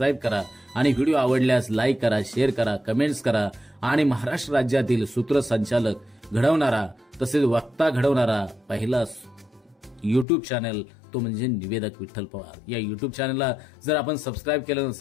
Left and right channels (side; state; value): right; drops out; at 10.2 s